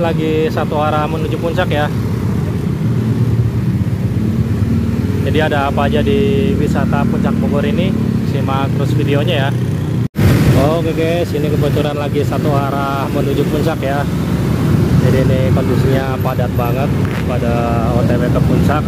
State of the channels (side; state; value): both; identical; correlation 1.00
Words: satu arah menuju puncak ya. Jadi ada apa aja di wisata puncak Bogor ini, simak terus videonya ya. Oke guys, ini kebetulan lagi satu arah menuju puncak ya. Jadi ini kondisinya padat banget pada OTW ke puncak.